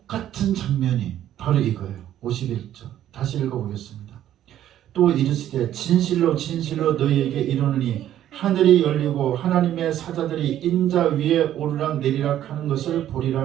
장면이 바로 이거예요. 51절 다시 읽어보겠습니다. 또 이르시되 진실로 진실로 너희에게 이르노니 하늘이 열리고 하나님의 사자들이 인자 위에 오르락 내리락 하는 것을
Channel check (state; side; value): quieter; left; 11.7 dB